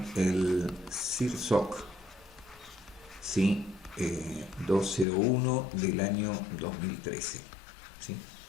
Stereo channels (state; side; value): drops out; right; at 5.1 s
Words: el CIRSOC, ¿sí? 201 del año 2013, ¿sí?